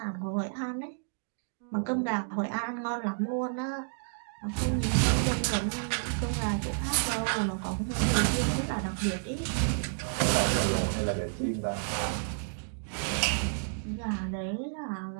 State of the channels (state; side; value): silent; left; digital silence